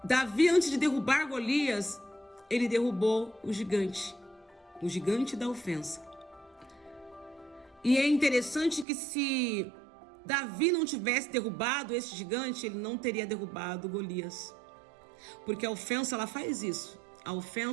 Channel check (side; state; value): left; drops out; at 8.8 s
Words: Davi, antes de derrubar Golias, ele derrubou o gigante da ofensa. E é interessante que se Davi não tivesse derrubado esse gigante, ele não teria derrubado Golias. Porque a ofensa, ela faz isso. A